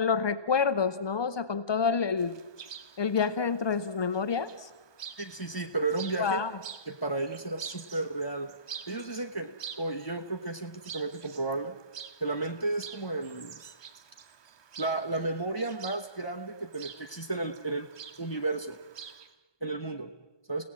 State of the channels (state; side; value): late; right; 1.2 ms